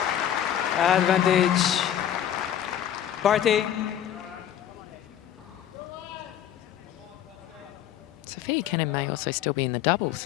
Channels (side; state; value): right; quieter; 10.6 dB